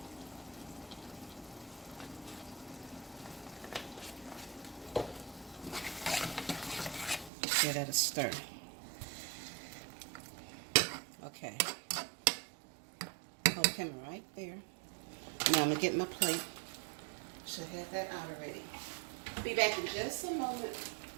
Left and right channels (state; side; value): drops out; left; at 7.3 s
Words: Give that a stir. Okay. Hold the camera right there. Now I'm going to get my plate. Should have that out already. Be back in just a moment.